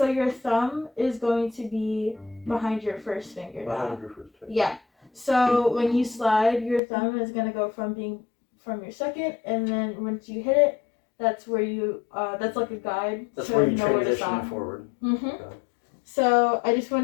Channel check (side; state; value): right; drops out; at 6.8 s